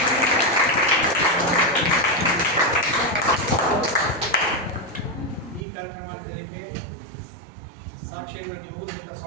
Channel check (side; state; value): left; drops out; at 5.7 s